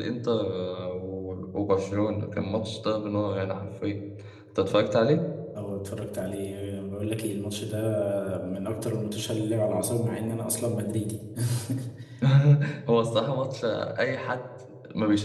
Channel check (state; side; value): identical; both; correlation 1.00